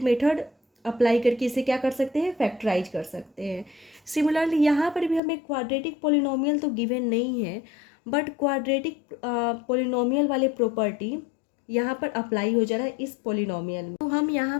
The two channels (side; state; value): right; drops out; at 5.2 s